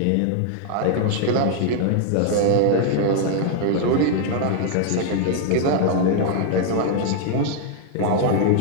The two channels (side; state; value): both; different; correlation 0.00